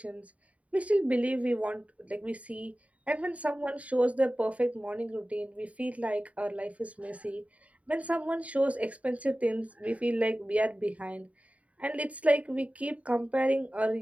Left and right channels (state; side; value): late; left; 0.067 ms